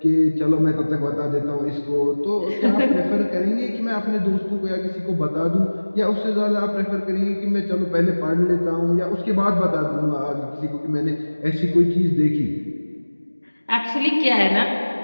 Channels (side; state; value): both; inverted; correlation -1.00